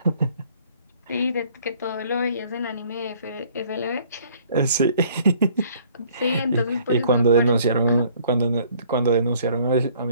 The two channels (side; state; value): both; inverted; correlation -0.58